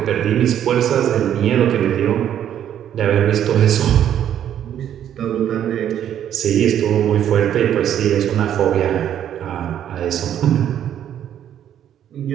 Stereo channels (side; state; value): left; quieter; 10.2 dB